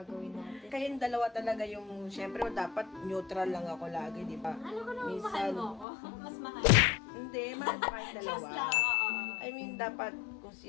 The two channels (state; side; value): drops out; right; at 5.9 s